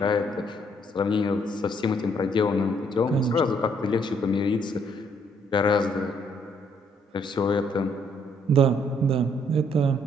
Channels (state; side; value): normal; both; correlation 0.68